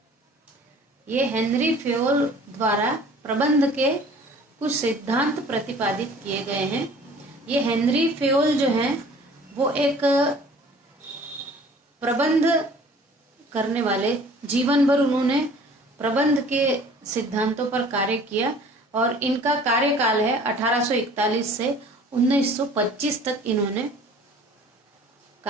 ये हेनरी फेयोल द्वारा प्रबंध के कुछ सिद्धांत प्रतिपादित किए गए हैं। ये हेनरी फेयोल जो हैं वो एक प्रबंध करने वाले, जीवन भर उन्होंने प्रबंध के सिद्धांतों पर कार्य किया और इनका कार्यकाल है 1841 से 1925 तक इन्होंने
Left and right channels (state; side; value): normal; both; correlation 0.49